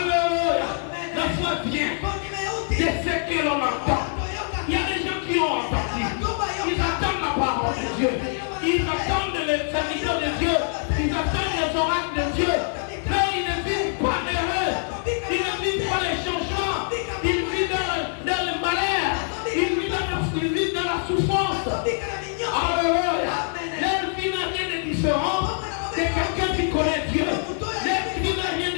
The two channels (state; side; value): silent; right; 62 dB below the other